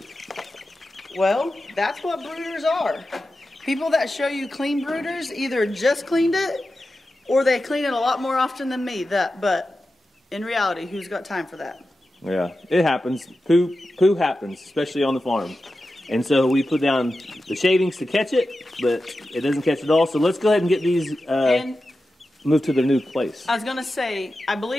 Well, that's what brooders are. People that show you clean brooders either just cleaned it or they clean it a lot more often than me. But in reality, who's got time for that? Yeah, it happens. Poo happens, especially on the farm. And so we put down the shavings to catch it, but it doesn't catch it all. So let's go ahead and get these moved to their new place. I was going to say, I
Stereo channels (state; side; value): normal; both; correlation 0.92